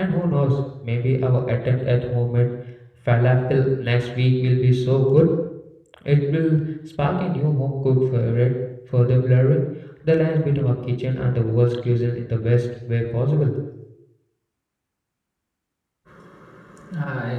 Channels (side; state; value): both; identical; correlation 1.00